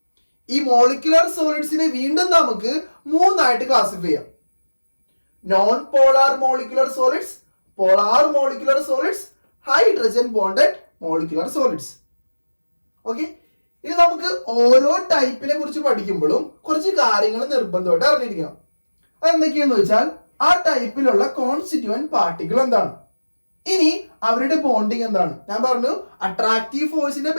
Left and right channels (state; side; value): inverted; both; correlation -1.00